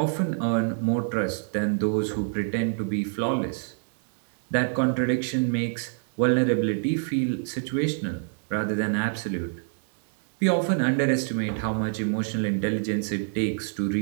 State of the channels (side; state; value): left; silent; digital silence